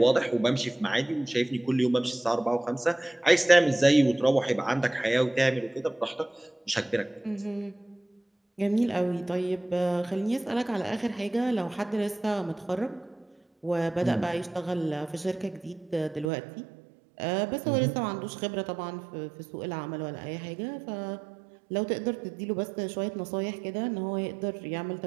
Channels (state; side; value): drops out; left; at 16.3 s